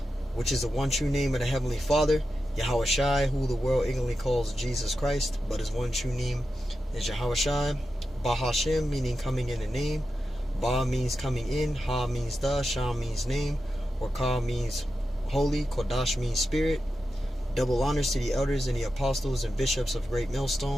which is the one true name of the Heavenly Father. YAHAWASHI, who the world ignorantly calls Jesus Christ, but his one true name is YAHAWASHI. BAHASHAM, meaning coming in the name. Ba means coming in, Ha means the, Sham means name, RACHAA means holy, QADASH means spirit. Double honors to the elders and the apostles and bishops of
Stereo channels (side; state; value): both; normal; correlation 0.90